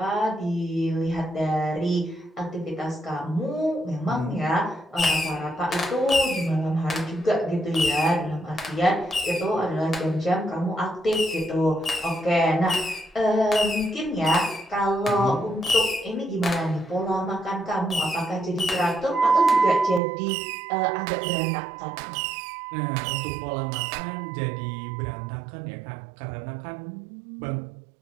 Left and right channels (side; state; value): left; drops out; at 20.0 s